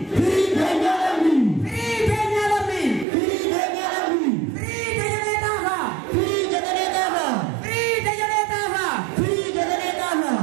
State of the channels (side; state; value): left; drops out; at 3.1 s